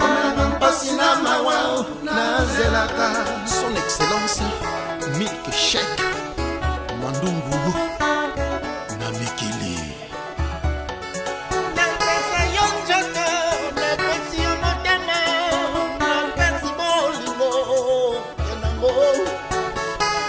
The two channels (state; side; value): identical; both; correlation 1.00